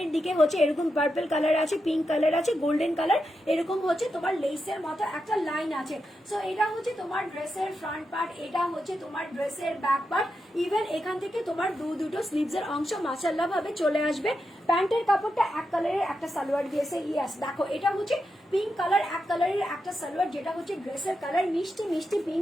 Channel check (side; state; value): both; normal; correlation 0.87